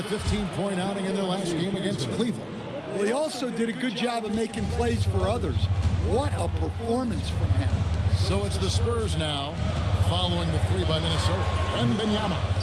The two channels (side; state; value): both; identical; correlation 1.00